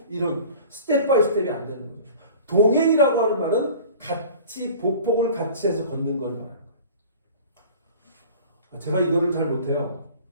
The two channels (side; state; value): both; inverted; correlation -0.43